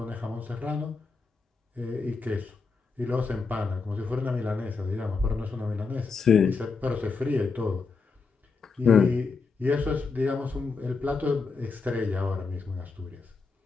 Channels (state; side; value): quieter; right; 4.6 dB